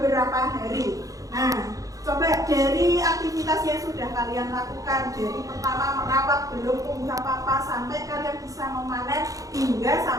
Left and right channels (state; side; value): late; left; 0.17 ms